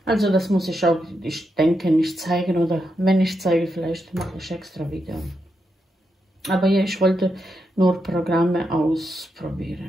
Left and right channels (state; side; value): normal; both; correlation 0.84